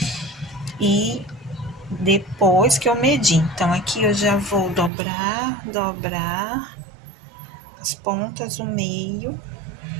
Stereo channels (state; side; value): drops out; left; at 4.9 s